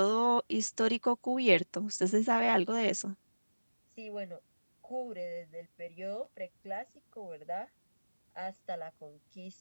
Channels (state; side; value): inverted; both; correlation -1.00